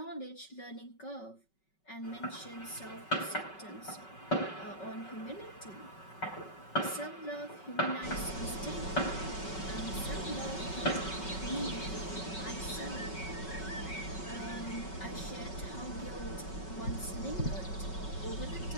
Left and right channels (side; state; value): right; late; 5.3 ms